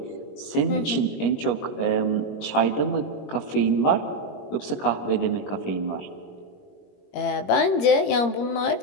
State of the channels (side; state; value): right; late; 21 ms